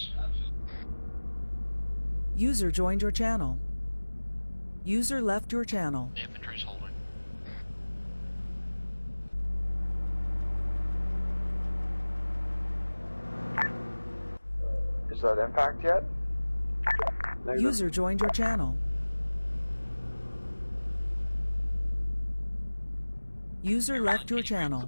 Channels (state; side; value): inverted; both; correlation -1.00